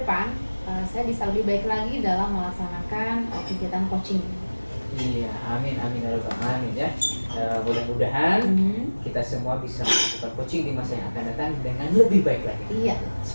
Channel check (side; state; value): both; inverted; correlation -1.00